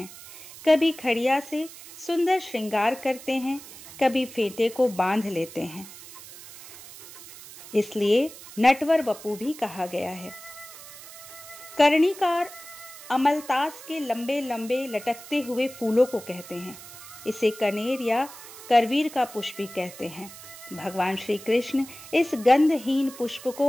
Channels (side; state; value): right; noise; hiss, 16 dB below the sound